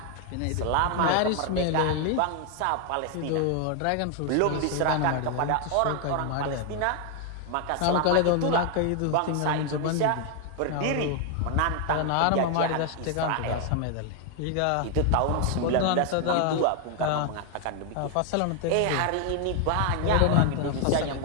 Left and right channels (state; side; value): different; both; correlation 0.01